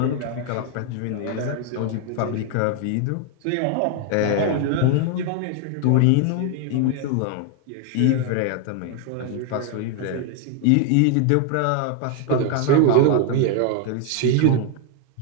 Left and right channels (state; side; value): different; both; correlation 0.00